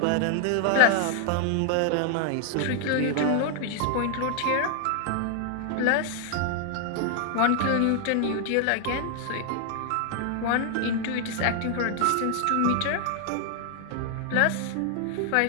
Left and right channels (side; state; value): both; different; correlation 0.00